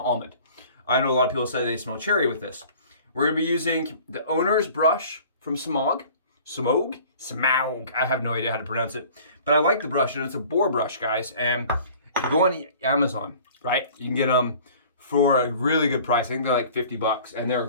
almond. I know a lot of people say they smell cherry with this. We're gonna be using the owner's brush from Semogue. Semogue. I have no idea how to pronounce it, but I like the brush, and it's a boar brush, guys. And go on Amazon, right? You can get them for a really good price. I think they're like $50, and they're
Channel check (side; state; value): both; inverted; correlation -0.48